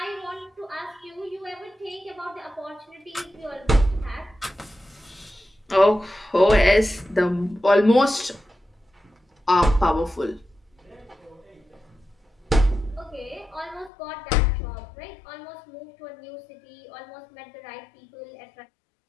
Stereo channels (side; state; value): right; drops out; at 13.9 s